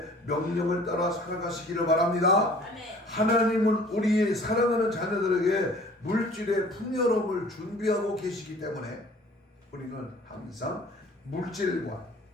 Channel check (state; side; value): normal; both; correlation 0.50